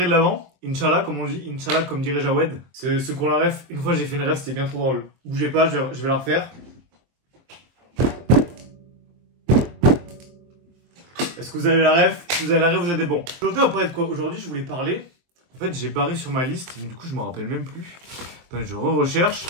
de l'Avent. Inch'Allah comme on dit, Inch'Allah comme dirait Jawed. C'est ce qu'on la ref. Une fois j'ai fait une ref, c'était bien trop drôle. Bougez pas, je vais la refaire. Est-ce que vous avez la ref? Si vous avez la ref, vous êtes des bons. Aujourd'hui on va parler de quoi? Aujourd'hui je voulais parler. En fait j'ai barré sur ma liste, mais du coup je me rappelle même plus. Attendez, je recherche.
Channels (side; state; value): left; late; 23 ms